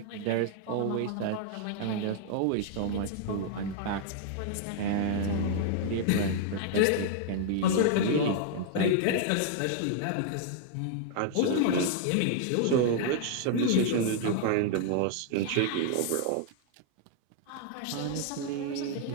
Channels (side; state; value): both; different; correlation 0.00